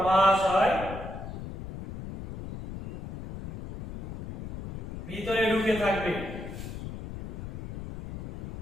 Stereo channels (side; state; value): left; noise; rumble, 9 dB below the sound